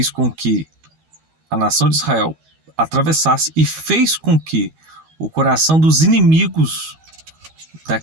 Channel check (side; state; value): left; late; 13 ms